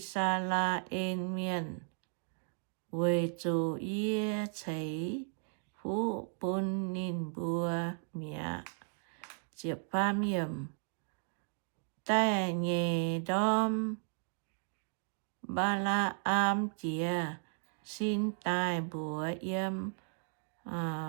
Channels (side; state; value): left; silent; 54 dB below the other